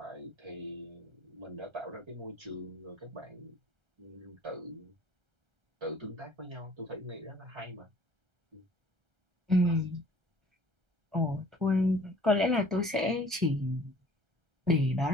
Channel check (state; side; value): late; left; 1.3 ms